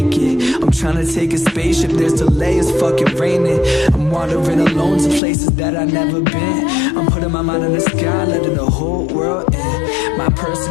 it. I'm trying to take a spaceship, there's delay, it's fucking raining. I'm wandering alone to places that I've never been. I'm putting my mind in the sky, letting the whole world in. My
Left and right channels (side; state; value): right; drops out; at 5.2 s